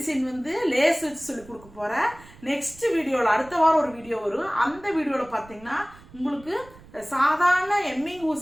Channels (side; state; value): right; noise; rumble, 22 dB below the sound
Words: லேஸ் வச்சு சொல்லி கொடுக்க போறேன். நெக்ஸ்ட் வீடியோவில் அடுத்த வாரம் ஒரு வீடியோ வரும். அந்த வீடியோவில் பார்த்தீங்கன்னா உங்களுக்கு சாதாரண எம்மிங்